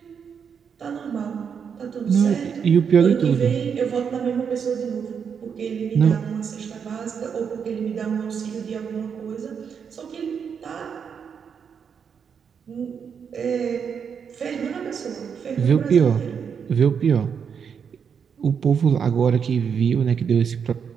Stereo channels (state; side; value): quieter; left; 6.9 dB